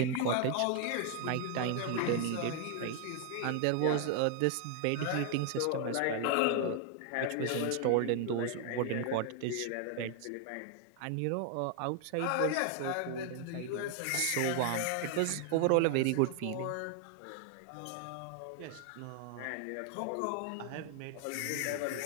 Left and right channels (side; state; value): both; different; correlation 0.00